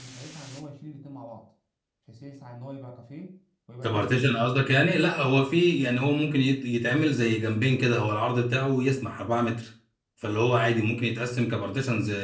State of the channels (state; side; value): identical; both; correlation 1.00